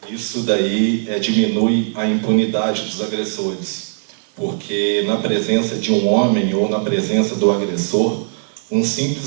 isso daí diminui a impunidade dos agressores, porque na presença de um homem ou na presença do agressor, um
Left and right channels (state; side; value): silent; left; digital silence